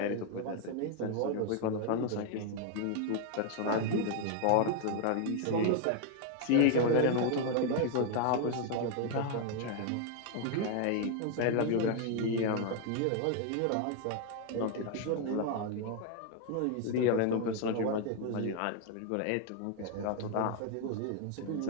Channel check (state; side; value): different; both; correlation 0.00